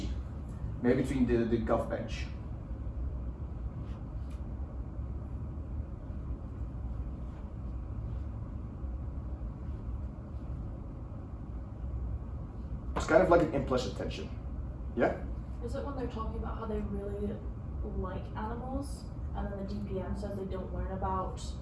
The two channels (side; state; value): both; identical; correlation 1.00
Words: Maybe between the gov bench? It's kind of like an implicit tension. Yeah? Is it when they're talking about how they really like animals, and then the DPM says they don't learn about